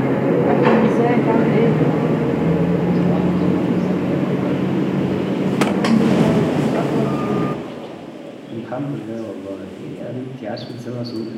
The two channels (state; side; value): identical; both; correlation 1.00